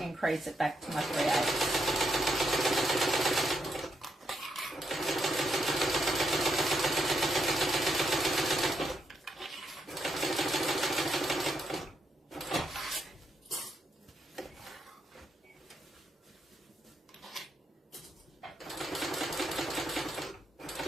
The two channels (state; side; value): normal; both; correlation 0.79